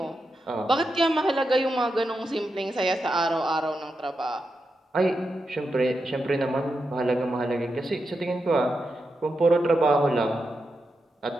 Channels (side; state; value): both; normal; correlation 0.87